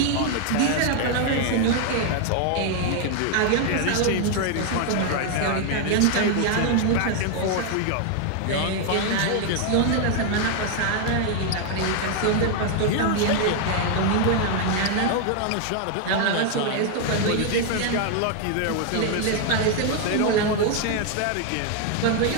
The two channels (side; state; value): both; different; correlation 0.00